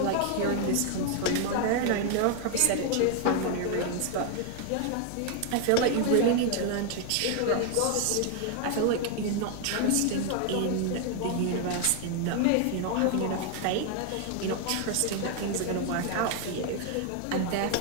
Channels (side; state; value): both; different; correlation 0.00